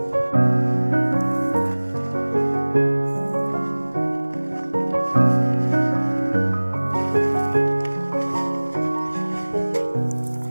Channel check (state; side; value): inverted; both; correlation -1.00